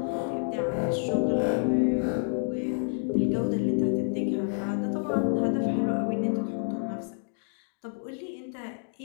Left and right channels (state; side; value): silent; right; digital silence